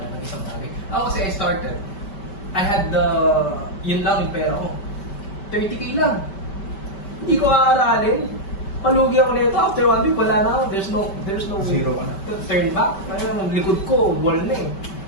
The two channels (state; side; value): late; right; 5.2 ms